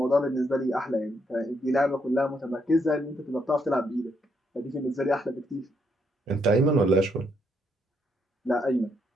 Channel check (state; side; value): normal; both; correlation 0.75